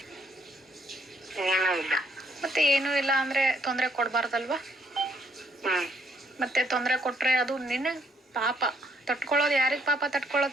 ಮತ್ತೆ ಏನೂ ಇಲ್ಲ ಅಂದ್ರೆ ತೊಂದರೆ ಕೊಡಬಾರ್ದಲ್ವಾ? ಮತ್ತೆ ತೊಂದರೆ ಕೊಟ್ರೆ ಅದು ನಿನಗೆ ಪಾಪ. ತಟ್ಕೊಳ್ಳೋದು ಯಾರಿಗೆ ಪಾಪ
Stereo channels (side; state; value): both; normal; correlation 0.70